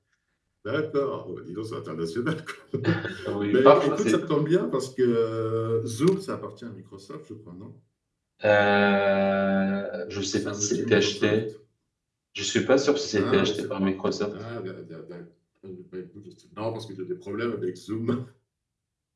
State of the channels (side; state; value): both; identical; correlation 1.00